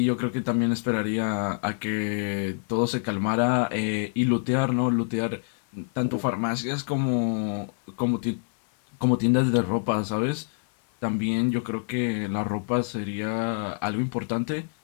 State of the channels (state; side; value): silent; right; 61 dB below the other